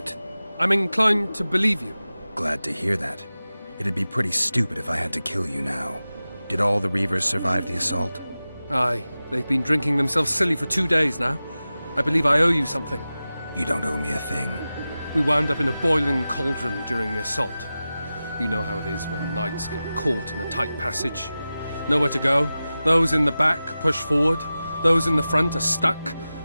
I'm inclined to believe you. Glad to hear that. It'd be pretty stupid if I had to kill you now. Did all the Reavers survive the assault? Aye, they've been drinking themselves silly for 2 days now. I believe I owe you something. You don't owe me a thing. We wound up in a boiling cauldron during the assault. You know how it is when knights get caught in a tight passage. Nowhere to go. Those in the back push forward. Those in the front are stuck.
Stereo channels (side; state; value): both; inverted; correlation -0.95